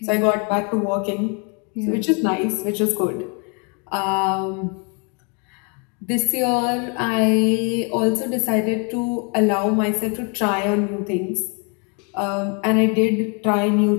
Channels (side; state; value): right; quieter; 35.6 dB